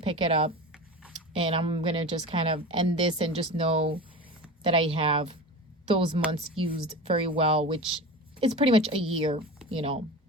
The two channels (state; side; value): normal; both; correlation 0.30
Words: it up. And I'm going to just kind of end this and just know that I have those months used very well, which is pretty much a year,